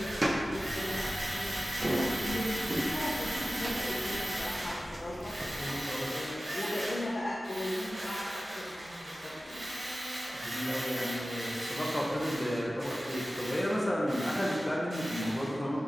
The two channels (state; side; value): normal; both; correlation 0.95